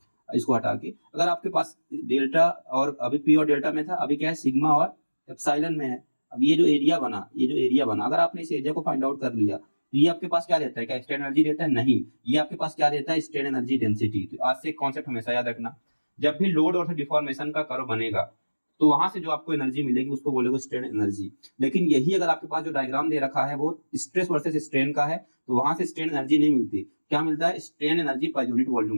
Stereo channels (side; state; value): both; inverted; correlation -1.00